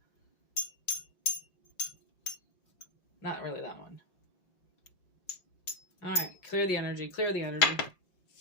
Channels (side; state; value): right; late; 5.7 ms